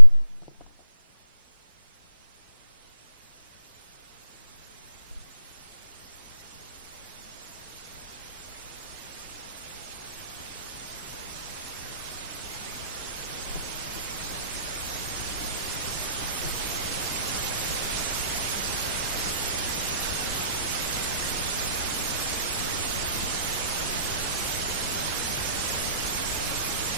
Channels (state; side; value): inverted; both; correlation -0.74